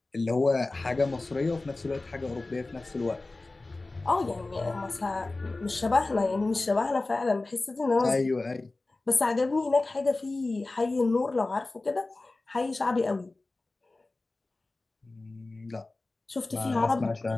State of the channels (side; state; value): right; quieter; 3.2 dB